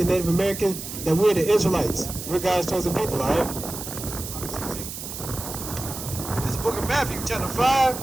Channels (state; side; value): noise; right; hiss, 9 dB below the sound